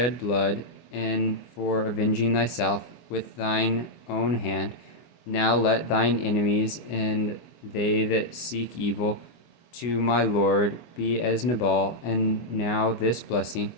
blood, and for avenging thyself with thine own hand, now let thine enemies and they that seek evil to my Lord be as Nabal. And now this blessing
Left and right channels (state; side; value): late; right; 24 ms